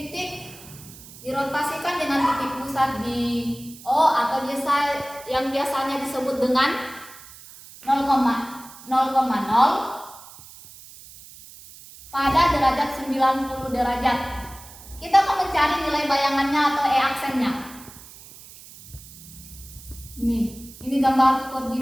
dirotasikan dengan titik pusat di O atau yang biasanya disebut dengan 0,0 pada derajat 90 derajat. Kita akan mencari nilai bayangannya atau aksennya. Ini gambar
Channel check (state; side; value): noise; right; hiss, 18 dB below the sound